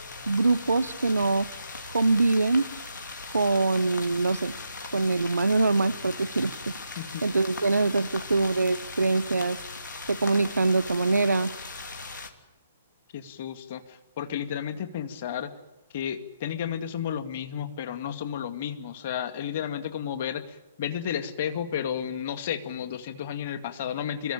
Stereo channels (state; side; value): inverted; both; correlation -0.80